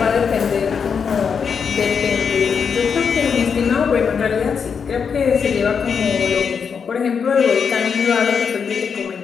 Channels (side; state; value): right; quieter; 6.4 dB